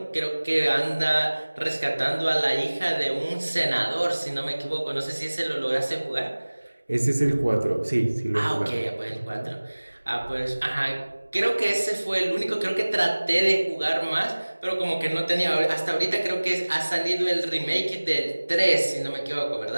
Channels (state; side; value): inverted; both; correlation -1.00